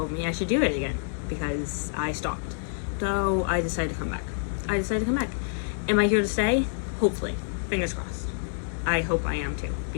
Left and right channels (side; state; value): right; silent; digital silence